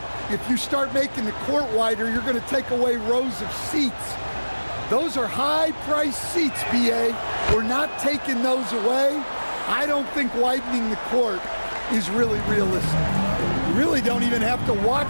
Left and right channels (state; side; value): inverted; both; correlation -1.00